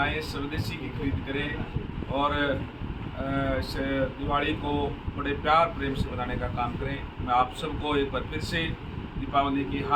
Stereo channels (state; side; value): identical; both; correlation 1.00